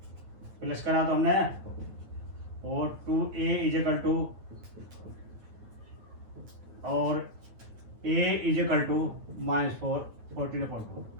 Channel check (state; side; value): late; left; 9.3 ms